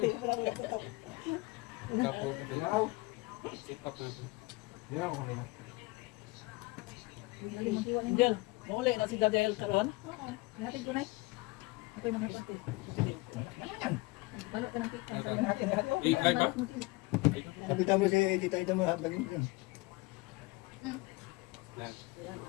Kapo. Sit up natin. Hindi ako kanina. Diyan, mauli na si Daniel karon. Natin ko na. Ako'y mga pati. Balot ka ng cake. Live ba? Kapita mo si Tita Ida mo habagin ko.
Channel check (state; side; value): quieter; right; 23.5 dB